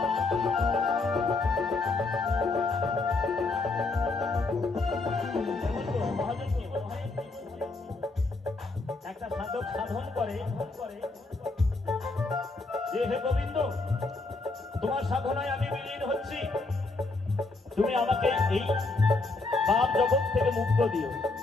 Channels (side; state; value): right; quieter; 3.5 dB